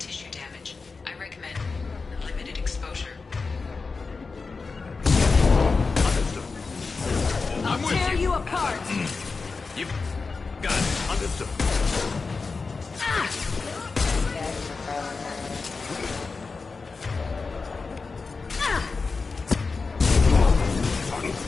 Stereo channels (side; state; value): right; quieter; 4.4 dB